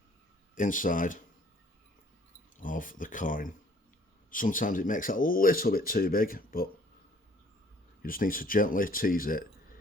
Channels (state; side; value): normal; both; correlation 0.58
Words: inside of the coin. Sometimes it makes it a little bit too big, but you just need to gently tease it